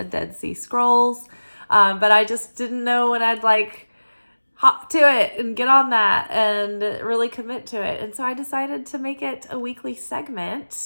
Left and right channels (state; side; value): inverted; both; correlation -1.00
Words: Dead Sea Scrolls, but I just didn't know when I'd hop to it and get on that and really commit to it. And so I decided to make it a weekly